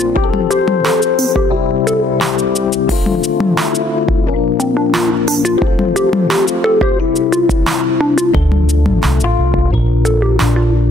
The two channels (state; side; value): normal; both; correlation 0.71